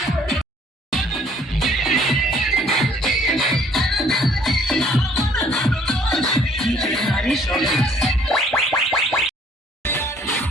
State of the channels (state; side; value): normal; both; correlation 0.60